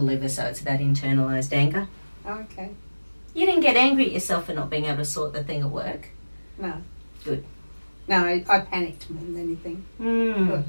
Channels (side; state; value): both; inverted; correlation -1.00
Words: liver, so it's about internalized anger. Okay. You didn't get angry at yourself for not being able to sort the thing at work? No. Good. No, I panicked more than anything. Thought,